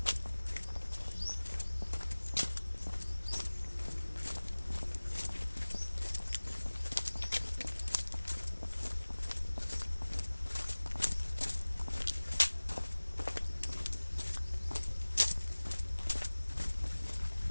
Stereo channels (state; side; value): inverted; both; correlation -1.00